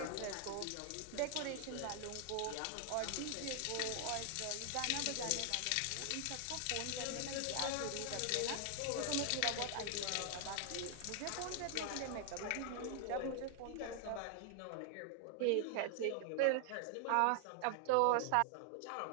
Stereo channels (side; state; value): both; different; correlation 0.00